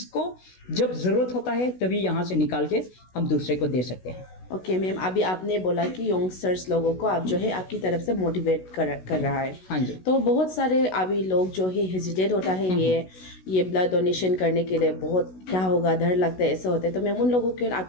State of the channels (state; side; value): late; right; 16 ms